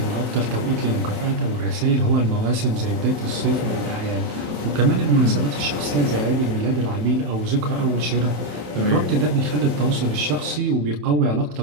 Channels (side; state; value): left; late; 27 ms